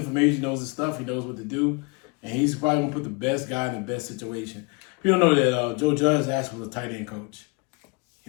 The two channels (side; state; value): right; quieter; 30.2 dB